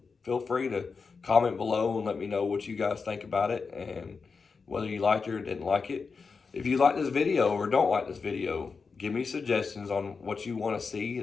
feel free to comment below and let me know what you guys think about it and whether you liked it or didn't like it. If you like this video or don't like this video, give me suggestions on what you want to see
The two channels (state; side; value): quieter; right; 5.0 dB